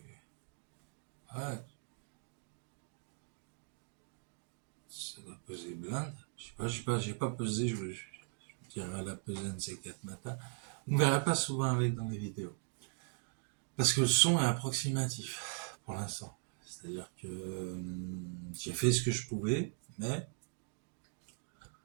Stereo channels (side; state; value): left; silent; 52 dB below the other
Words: ouais, ça doit peser blinde. Je sais pas, j'ai pas pesé, je dirais la peser un de ces 4 matins. On ne verra pas souvent avec dans les vidéos. Parce que le son est approximatif pour l'instant. C'est-à-dire que j'ai fait ce que je pouvais, mais